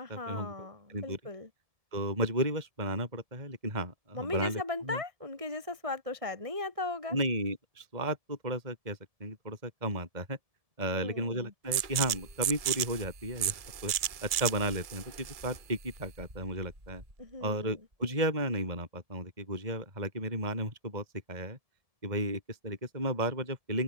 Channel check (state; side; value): late; left; 1.7 ms